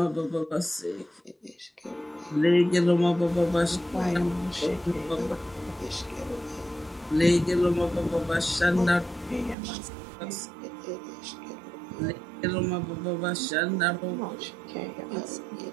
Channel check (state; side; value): drops out; left; at 9.6 s